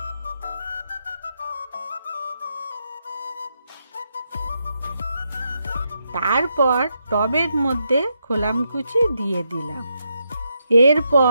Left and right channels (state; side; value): inverted; both; correlation -0.82